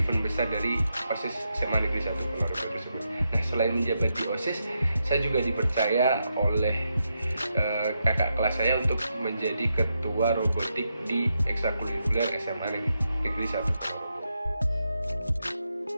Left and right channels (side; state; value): both; inverted; correlation -0.84